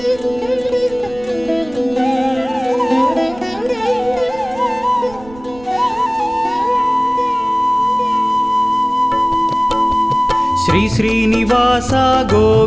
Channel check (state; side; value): noise; right; rumble, 20 dB below the sound